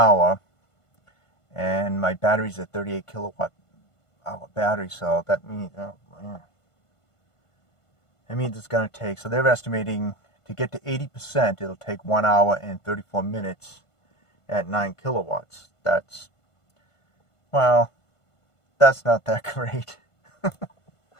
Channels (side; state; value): right; late; 1.5 ms